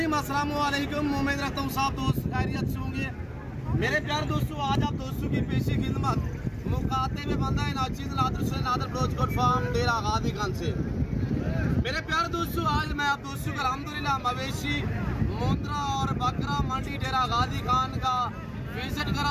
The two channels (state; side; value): identical; both; correlation 1.00